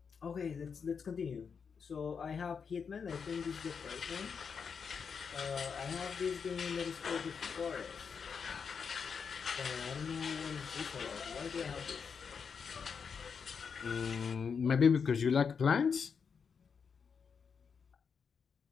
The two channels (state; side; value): quieter; right; 6.2 dB